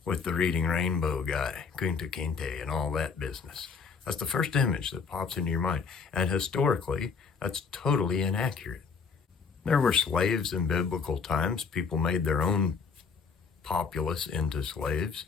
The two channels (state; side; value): quieter; right; 5.5 dB